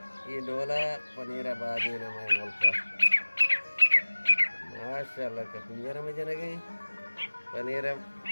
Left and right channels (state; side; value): inverted; both; correlation -1.00